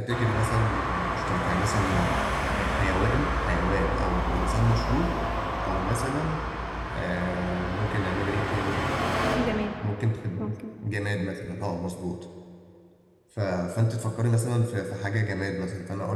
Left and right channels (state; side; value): identical; both; correlation 1.00